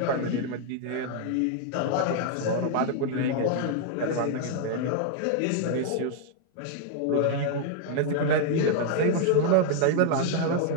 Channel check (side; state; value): both; different; correlation 0.00